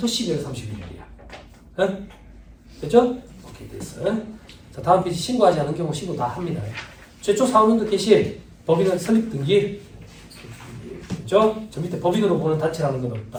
12월 31일이야. 응? 됐죠? 오케이, 됐어. 자, 다음 페이지 신고하지 않은 경우 신고 다 합니다. 최초 4학년도 개시 법인은 설립 등기. 됐죠? 저 밑에 법인으로 보는 단체라는 건 없다.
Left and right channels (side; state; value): both; identical; correlation 1.00